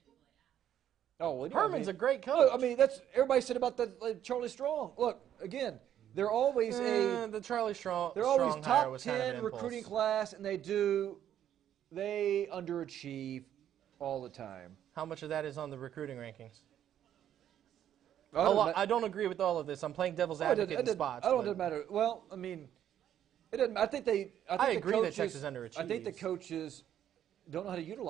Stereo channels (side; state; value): left; quieter; 10.5 dB